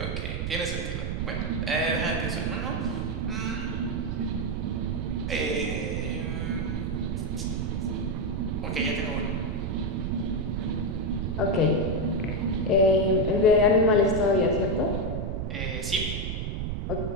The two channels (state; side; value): noise; right; rumble, 2 dB below the sound